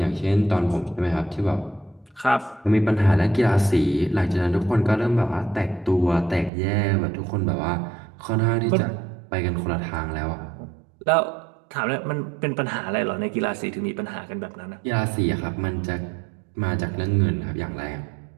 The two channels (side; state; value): left; drops out; at 6.5 s